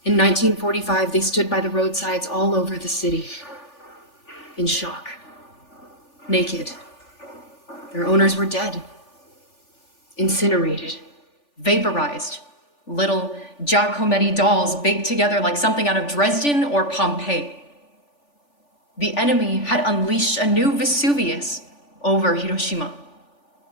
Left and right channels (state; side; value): late; right; 3.4 ms